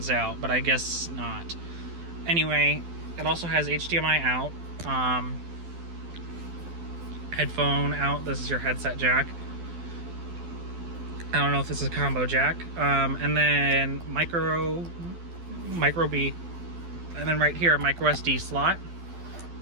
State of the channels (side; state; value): left; late; 12 ms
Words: out, but I guess not. Anyway, it also has HDMI out. Headphone out. This is your headset jack. I don't know if this is a combo jack. And then micro B. And then right here, a micro SD slot.